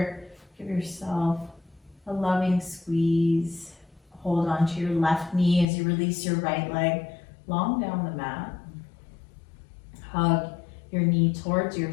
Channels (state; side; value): drops out; right; at 5.7 s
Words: Give yourself a loving squeeze. Hold onto your left knee as you release your right leg long down the mat. Hug your knee towards